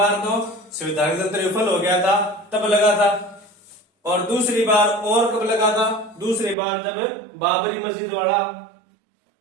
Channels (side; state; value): left; drops out; at 6.6 s